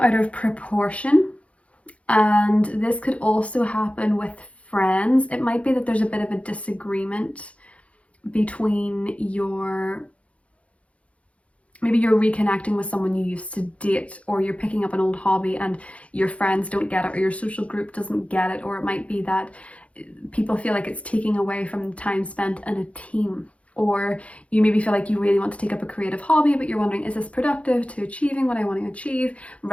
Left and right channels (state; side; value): late; right; 0.063 ms